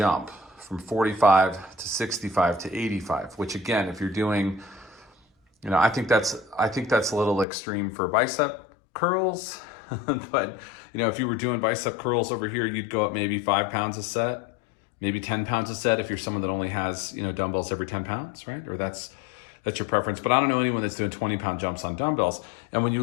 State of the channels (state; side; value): drops out; right; at 7.5 s